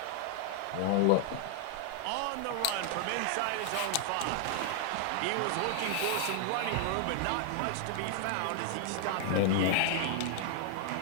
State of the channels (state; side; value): different; both; correlation 0.00